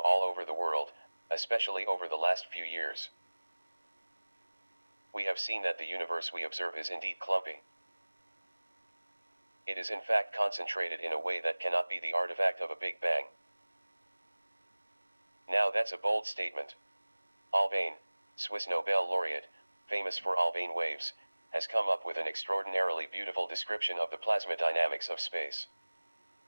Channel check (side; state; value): both; inverted; correlation -1.00